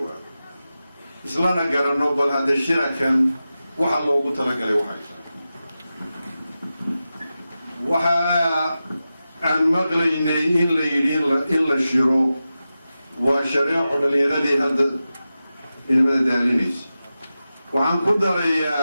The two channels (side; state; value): both; inverted; correlation -0.93